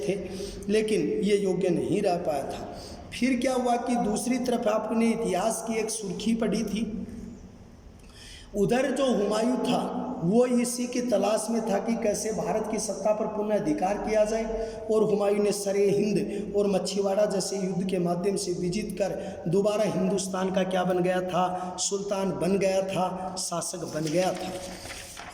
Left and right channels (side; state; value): both; identical; correlation 1.00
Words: थे, लेकिन ये योग्य नहीं रह पाया था। फिर क्या हुआ कि दूसरी तरफ आपने इतिहास की एक सुर्खी पढ़ी थी, उधर जो हुमायूं था वो इसी की तलाश में था कि कैसे भारत की सत्ता पर पुनः अधिकार किया जाए। और हुमायूं ने सरे हिंद और मच्छीवाड़ा जैसे युद्ध के माध्यम से विजित कर दोबारा हिंदुस्तान का क्या बन गया था? सुल्तान बन गया था, शासक बन गया था।